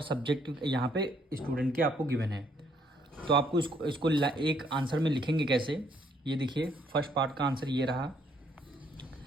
सब्जेक्ट यहाँ पे स्टूडेंट के आपको गिवन है। तो आपको इसको एक आंसर में लिखेंगे कैसे, ये देखिए। फर्स्ट पार्ट का आंसर ये रहा,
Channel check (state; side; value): normal; both; correlation 0.68